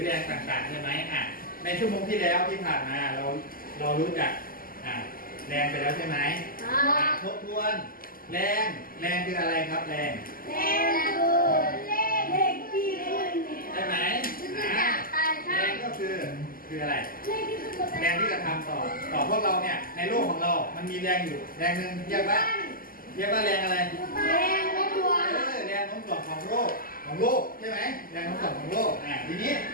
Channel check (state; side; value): late; right; 0.42 ms